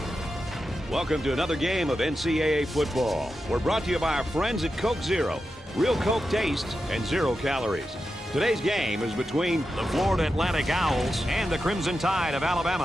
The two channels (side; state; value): both; normal; correlation 0.90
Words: Welcome to another game of NCAA football. We're brought to you by our friends at Coke Zero. Real Coke taste and 0 calories. Today's game is between the Florida Atlantic Owls and the Crimson Tide of